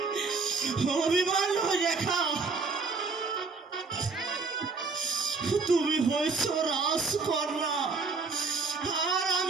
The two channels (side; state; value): left; quieter; 4.4 dB